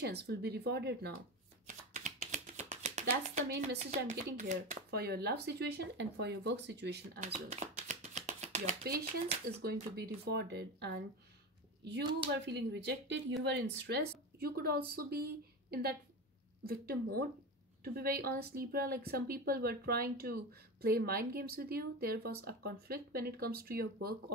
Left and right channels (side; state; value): both; normal; correlation 0.23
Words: will be rewarded now. That's the main message I'm getting here for your love situation and for your work situation as well. Your patience is going to be rewarded, and you were feeling rejected, you were in stress. You could also be in that victim mode, to be very honest, Libra. Like, some people were trying to play mind games with you. There was a conflict when it comes to your work